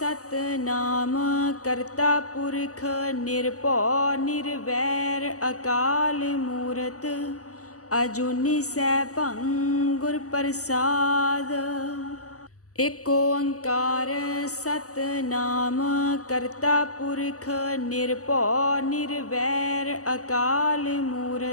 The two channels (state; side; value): late; right; 0.66 ms